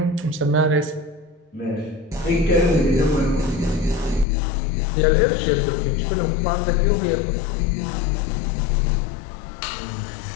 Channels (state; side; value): drops out; right; at 4.2 s